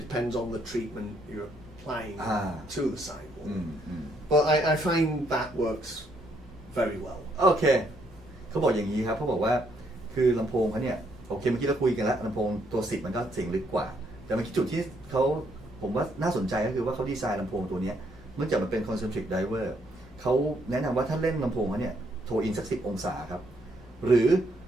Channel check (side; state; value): both; normal; correlation 0.72